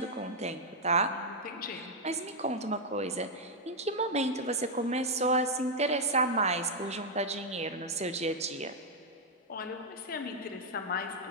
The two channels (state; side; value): normal; both; correlation -0.01